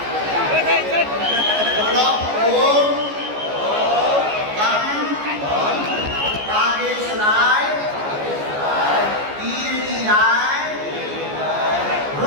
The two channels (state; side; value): late; left; 14 ms